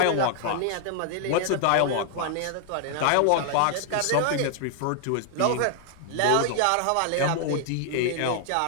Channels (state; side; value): different; both; correlation 0.00